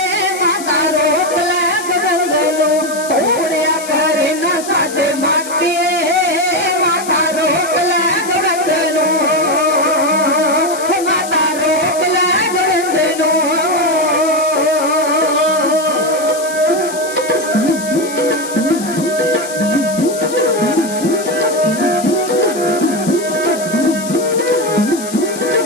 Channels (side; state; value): left; noise; hiss, 12 dB below the sound